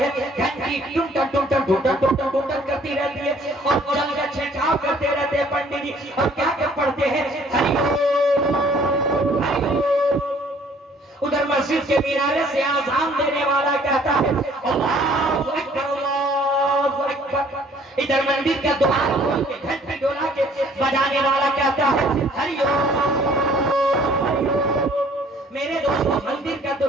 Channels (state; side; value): normal; both; correlation 0.58